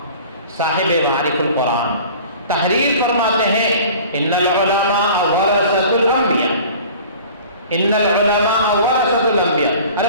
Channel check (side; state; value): both; inverted; correlation -0.44